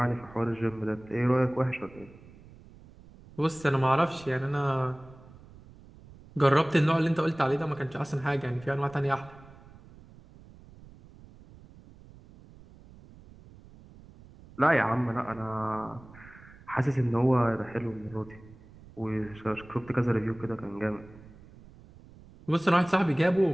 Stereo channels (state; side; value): noise; right; rumble, 22 dB below the sound